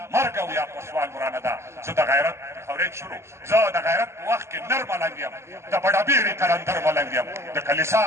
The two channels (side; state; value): left; late; 0.13 ms